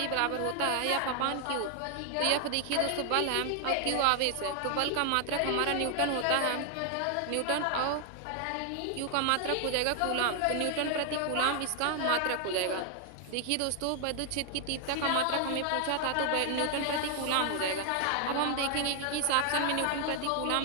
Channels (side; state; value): both; different; correlation 0.00